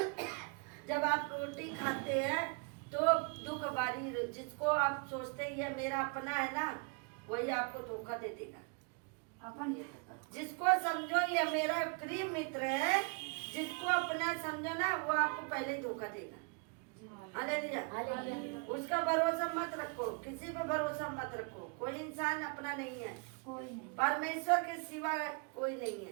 जब आप रोटी खाते हैं तो दुख बारी, जिसको आप सोचते हैं ये मेरा अपना है ना, वही आपको धोखा दे देगा। जिसको समझो ये मेरा प्रिय मित्र है, जिसको अपना समझो ना, वो आपको पहले ही धोखा देगा। हालेलुया। उसका भरोसा मत रखो, किसी पे भरोसा मत रखो। कोई इंसान अपना नहीं है, परमेश्वर के सिवा कोई नहीं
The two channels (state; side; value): quieter; left; 33.9 dB